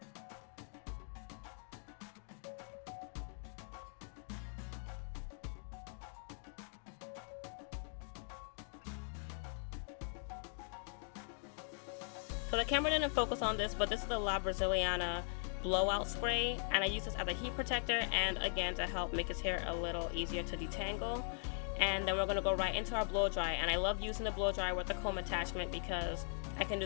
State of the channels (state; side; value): silent; right; 51 dB below the other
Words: So the camera didn't focus on this, but this is the La Braziliana blowout spray, and I use this as a heat protector and again to help make his hair a little easier to detangle. And then we're going to go right into our blow dry, and I love using the blow dryer with the comb attachment because I can